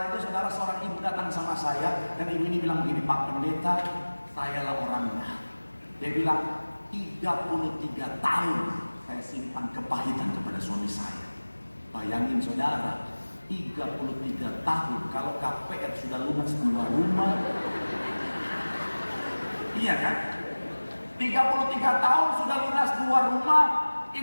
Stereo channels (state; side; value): inverted; both; correlation -1.00